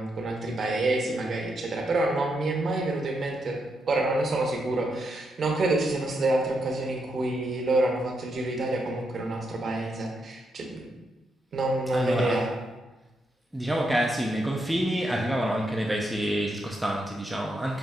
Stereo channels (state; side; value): normal; both; correlation 0.81